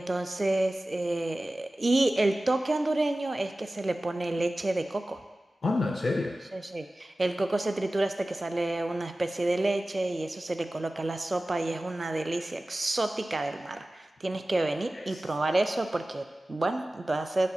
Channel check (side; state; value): both; normal; correlation 0.96